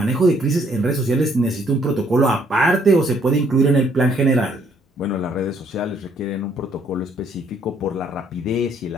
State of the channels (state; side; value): normal; both; correlation 0.66